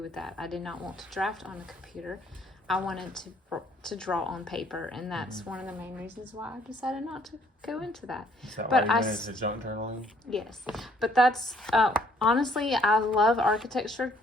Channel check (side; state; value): both; normal; correlation 0.64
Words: that. I did not want to draft on a computer. I wanted to draw on paper, and that's one of the main reasons why I decided not to go into that. Is that But why you went into junk journaling? Yes, but that's honestly, I love architecture